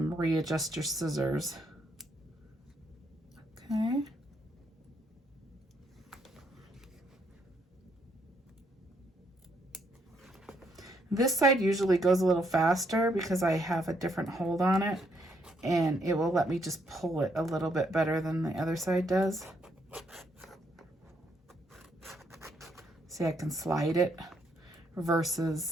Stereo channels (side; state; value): both; normal; correlation 0.73